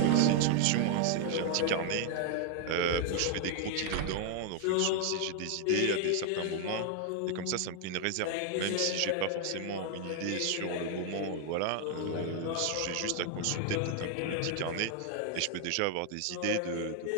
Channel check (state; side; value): different; both; correlation 0.00